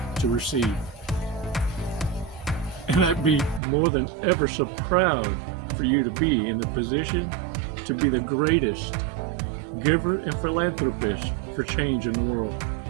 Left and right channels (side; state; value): left; drops out; at 3.6 s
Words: to receive. And I'd be more than ever so proud for you to be in the position to be the greatest giver and philanthropist for change in the world.